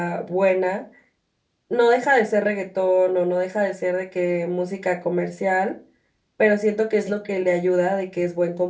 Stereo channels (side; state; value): both; identical; correlation 1.00